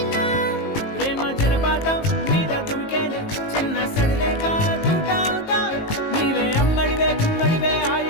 ప్రేమ జలపాతం మీద తుమికేనే చిన్న సడిలేక తూటావుతావే నీవే అమ్మడివే గుమ్మడివే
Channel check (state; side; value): late; right; 19 ms